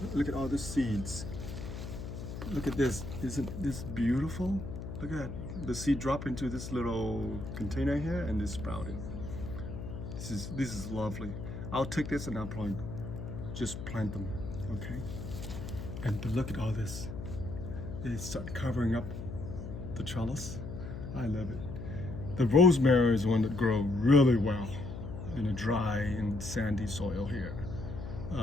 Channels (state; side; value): noise; left; hum, 8 dB below the sound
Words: Look at all the seeds. Look at this. Isn't this beautiful? Look at that. The seed drop into this little container here and it sprouted. This is lovely. I'll take this and I'll probably just plant them. Okay. But look at all this. They start covering up the trellis. I love it. The rosemary is one that grows really well in a dry and sandy soil here.